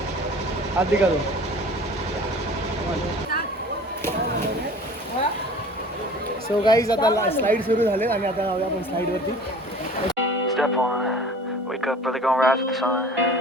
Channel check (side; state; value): both; normal; correlation 0.44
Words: हात दिका दो. सो गाईज आता स्लाईड सुरू झाले आणि आता जाऊया आपण स्लाईडवरती. Step 1, wake up early, gonna rise with the sun.